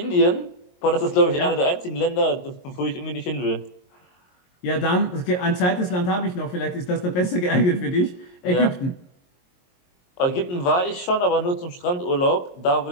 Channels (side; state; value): right; late; 22 ms